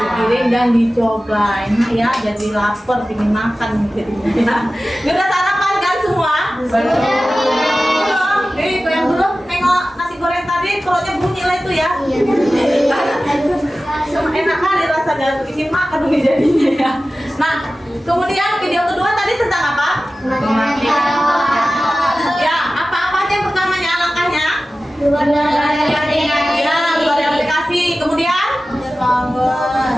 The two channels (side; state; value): both; normal; correlation 0.95